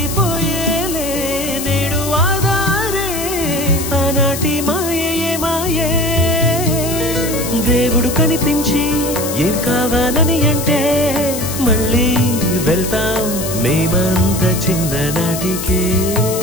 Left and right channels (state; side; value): noise; left; hiss, 7 dB below the sound